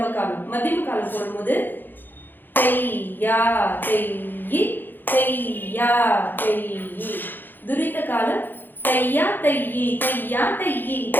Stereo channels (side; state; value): right; late; 0.092 ms